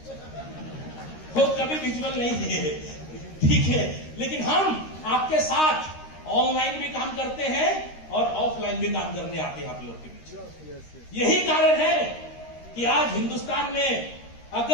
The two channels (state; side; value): late; right; 13 ms